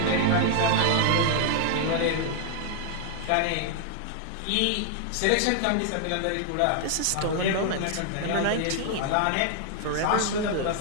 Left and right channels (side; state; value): both; different; correlation 0.00